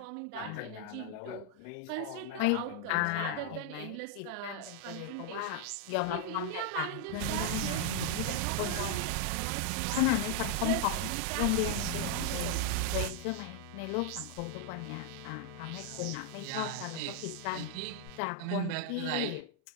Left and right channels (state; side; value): different; both; correlation 0.00